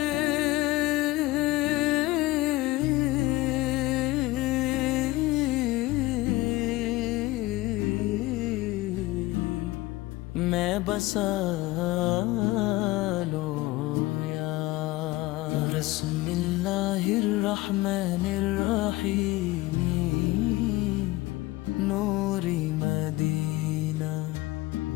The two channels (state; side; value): quieter; right; 19.2 dB